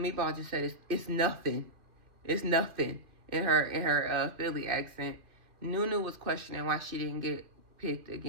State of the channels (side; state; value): left; late; 2.7 ms